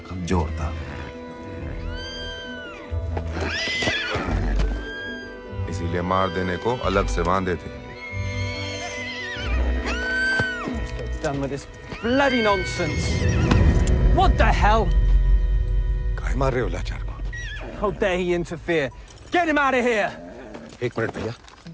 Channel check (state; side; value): identical; both; correlation 1.00